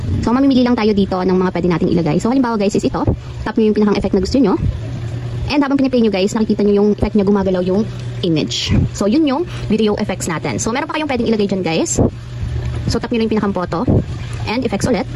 So, mamimili lang tayo dito ng mga pwede nating ilagay. So, halimbawa guys is ito. Tap nyo yung pinakang effect na gusto nyo. And habang piniplay nyo guys, nakikita nyo yung effect niya gumagalaw yung image. So, yun yung video effects natin. So, meron pa kayong pwedeng ilagay dyan guys. So, tap nyo lang yung pinakang photo. And effects ulit.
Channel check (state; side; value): identical; both; correlation 1.00